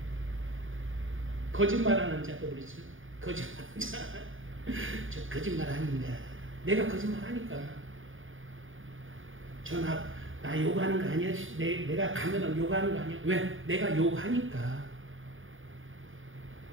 거짓말하는 자도 그러죠. 거짓말하는 자. 저 거짓말 아닌가. 내가 거짓말 하니까. 나 욕하는 거 아니야? 내가 가면은 욕하는 거 아니야? 왜? 내가 욕하니까.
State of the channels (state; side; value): late; left; 0.58 ms